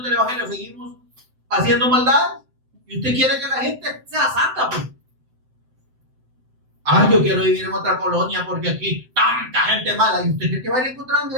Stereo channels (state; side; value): late; left; 7.8 ms